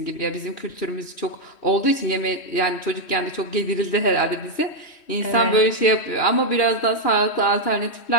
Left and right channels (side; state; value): right; late; 3.1 ms